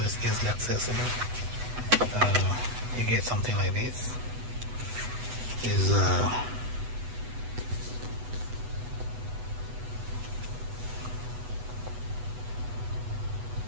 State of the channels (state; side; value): late; left; 8.1 ms